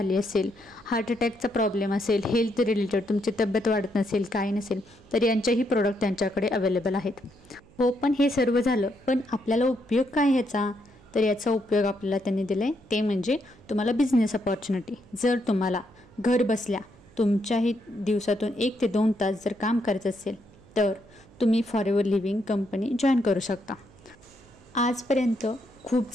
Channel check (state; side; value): noise; right; hum, 26 dB below the sound